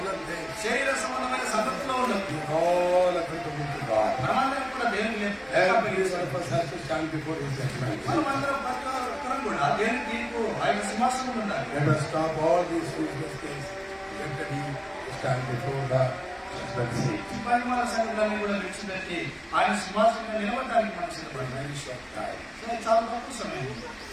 things. శరీర సంబంధమైన సంగతిలో ఉండదు. All applicable to God. మనమందరం కూడా దేవుని Every one of us has to stand before His judgment. మనమందరం ప్రతి ఒక్కరం కూడా దేవుని తీర్పు ఆయన సింహాసనం ఉండాలి. Let us stop all these useless things. Let He stand before the judgment seat. ఈ పరిమాణ సంగతులన్నీ కూడా విడిచిపెట్టి ఆయన సింహాసనంలో నిలబడడానికి మనం సిద్ధపడాలి. Very short time. చాలా తక్కువ సమయం.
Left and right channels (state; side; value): identical; both; correlation 1.00